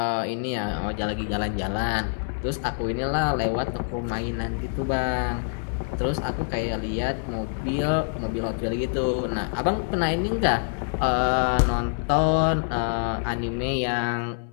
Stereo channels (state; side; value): silent; right; digital silence